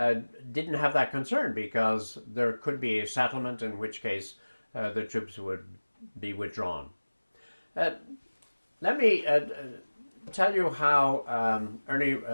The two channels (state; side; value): inverted; both; correlation -1.00